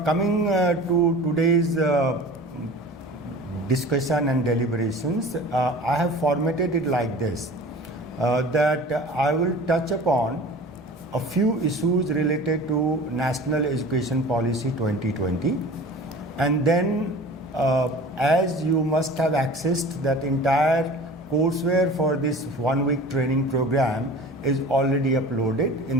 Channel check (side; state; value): both; normal; correlation 0.40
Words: to today's discussion and deliberations, I have formatted it like this, that I will touch upon a few issues related to National Education Policy 2020, and then as you must have accessed that entire courseware for this one-week training program is already uploaded in